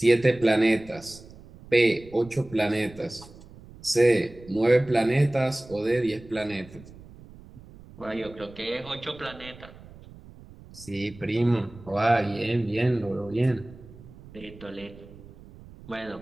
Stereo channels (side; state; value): right; noise; rumble, 20 dB below the sound